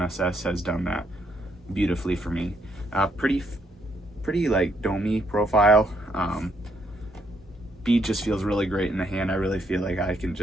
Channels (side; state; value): both; normal; correlation 0.73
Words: SS has done that beautifully for me. Pretty like domey profile. Bead just feels really great in the hand. I really feel like I can